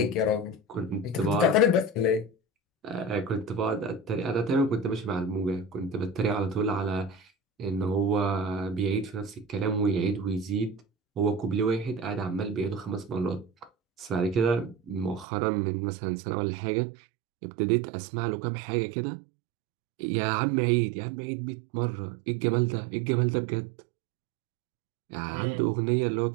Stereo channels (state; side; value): drops out; left; at 15.2 s